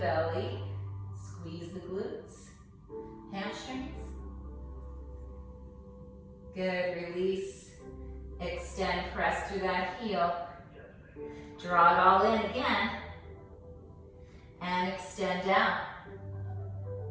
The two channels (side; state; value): both; identical; correlation 1.00